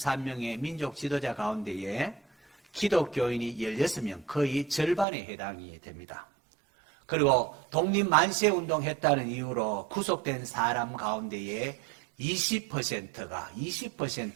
민족 지도자 가운데에 기독교인이 16명, 거의 절반에 해당이 됩니다. 그리고 독립만세운동 했다는 이유로 구속된 사람 가운데에 20%가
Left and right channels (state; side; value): drops out; left; at 5.1 s